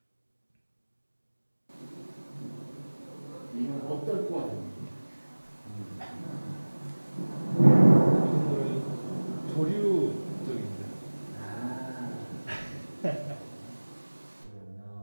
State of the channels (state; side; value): inverted; both; correlation -1.00